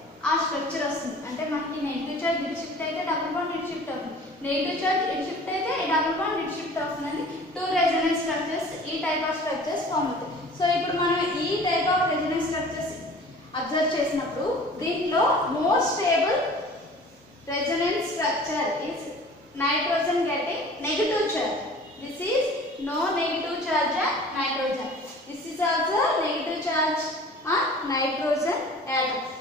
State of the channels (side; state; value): both; normal; correlation 0.45